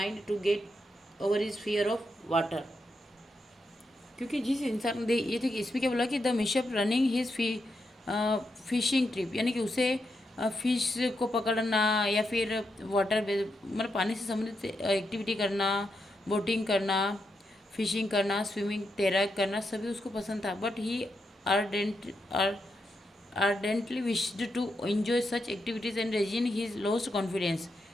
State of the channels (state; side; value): normal; both; correlation 0.84